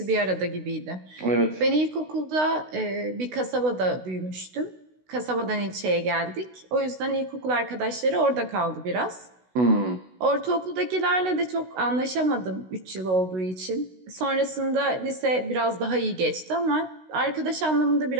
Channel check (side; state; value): left; late; 16 ms